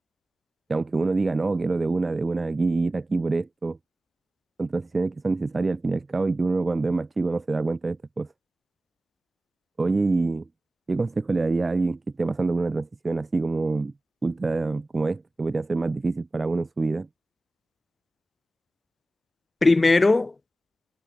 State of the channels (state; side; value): normal; both; correlation 0.96